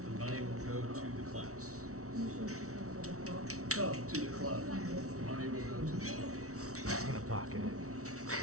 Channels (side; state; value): left; late; 0.64 ms